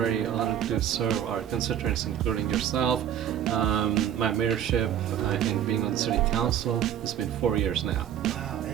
honored to serve our constituents, including yourself. My mayorship and being on the city council, it's been 4 years now. Wow,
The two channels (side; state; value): left; quieter; 10.1 dB